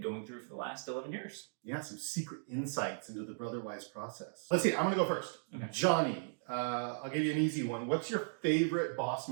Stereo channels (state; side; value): silent; left; digital silence